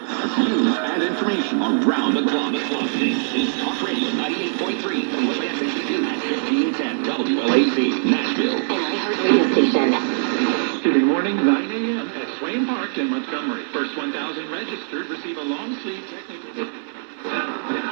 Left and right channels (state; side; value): silent; left; digital silence